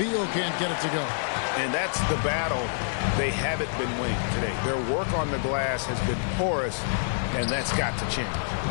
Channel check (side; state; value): right; silent; digital silence